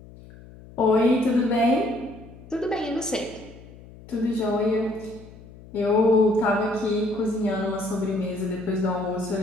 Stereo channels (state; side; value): noise; left; hum, 20 dB below the sound